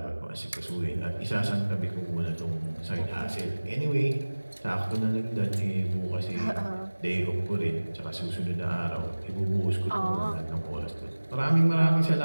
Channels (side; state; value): both; inverted; correlation -1.00